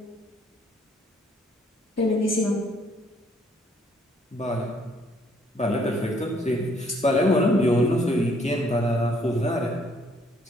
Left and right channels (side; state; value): both; normal; correlation 0.66